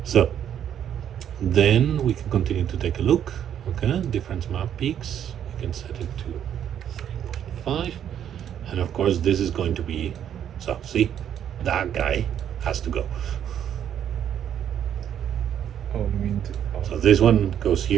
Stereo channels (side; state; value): left; quieter; 9.6 dB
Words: so then we can continue to take a look. Okay, difference map peaks. You can set it to 3.5, and of course this is going to be, so see, that guy has to go. Oh, you mean So this one goes